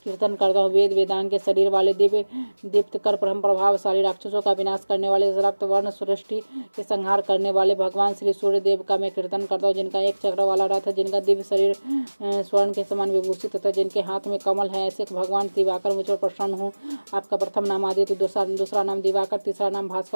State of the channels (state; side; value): inverted; both; correlation -1.00